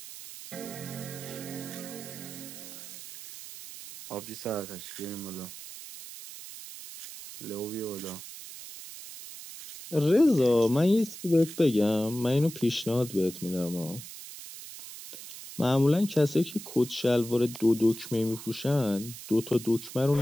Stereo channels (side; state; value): right; noise; hiss, 13 dB below the sound